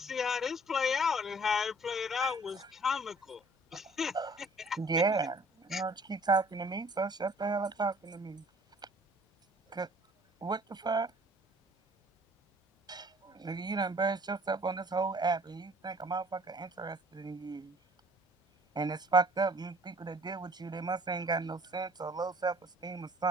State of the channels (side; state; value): both; normal; correlation 0.54